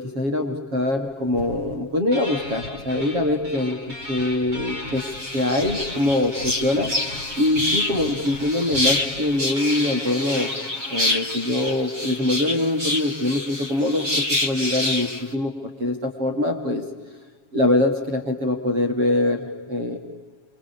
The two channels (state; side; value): late; left; 7.3 ms